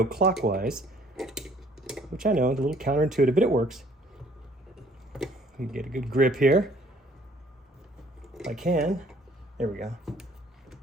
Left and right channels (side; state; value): both; normal; correlation 0.59